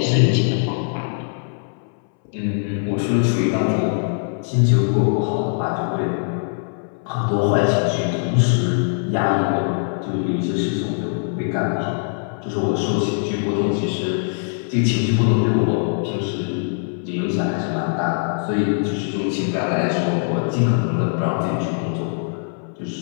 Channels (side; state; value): right; silent; 65 dB below the other